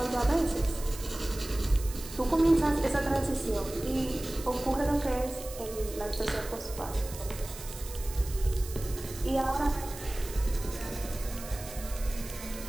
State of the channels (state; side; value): noise; right; hiss, 13 dB below the sound